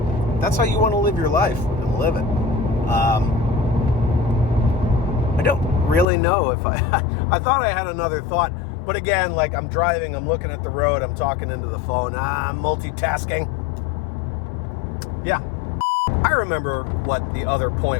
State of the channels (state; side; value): drops out; right; at 6.1 s